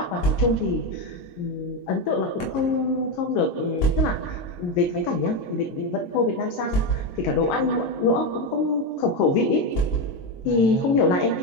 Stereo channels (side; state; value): right; late; 22 ms